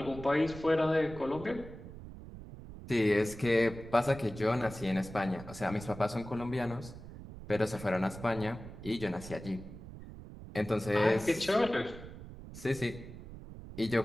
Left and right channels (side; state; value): right; noise; rumble, 13 dB below the sound